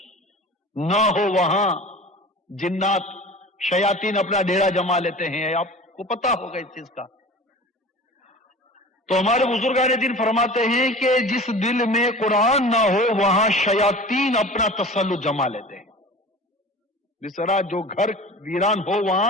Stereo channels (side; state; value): both; normal; correlation 0.38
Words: نہ ہو وہاں جنات شیاطین اپنا ڈیرا جما لیتے ہیں، آپ کو پتا ہوگا اس چیز کا۔ تو ہمارے بزرگان دین فرماتے ہیں کہ جس دل میں قرآن نہ ہو وہاں شیاطین اپنا تسلط جما لیتے ہیں۔ جس طرح جو گھر ویران ہو